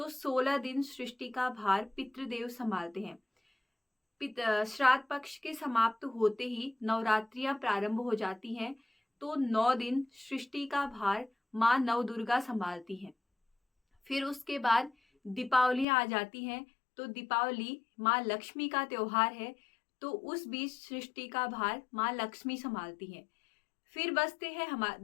16 दिन सृष्टि का भार पितृदेव संभालते हैं। श्राद्ध पक्ष के समाप्त होते ही नवरात्रियां प्रारंभ हो जाती हैं। तो 9 दिन सृष्टि का भार माँ नवदुर्गा संभालती हैं। फिर उसके बाद दीपावली आ जाती हैं। तो दीपावली माँ लक्ष्मी का त्योहार है, तो उस बीच सृष्टि का भार माँ लक्ष्मी संभालती हैं। फिर बचते हैं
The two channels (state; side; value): drops out; right; at 15.9 s